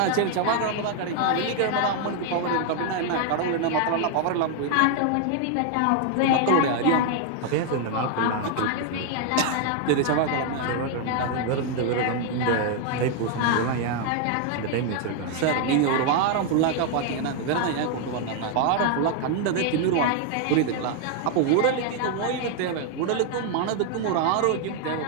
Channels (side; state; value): both; different; correlation 0.00